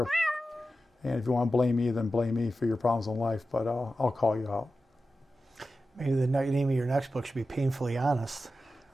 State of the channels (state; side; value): normal; both; correlation 0.92